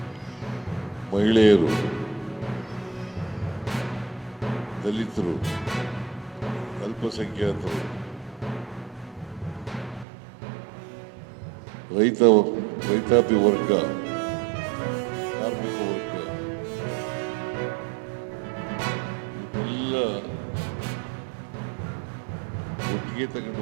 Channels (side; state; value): left; drops out; at 10.1 s